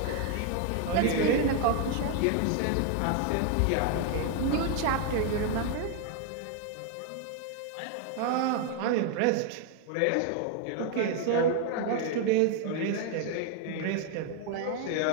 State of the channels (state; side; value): different; both; correlation 0.01